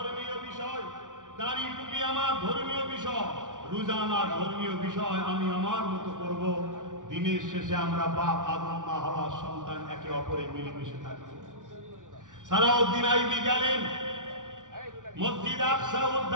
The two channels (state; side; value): late; left; 0.87 ms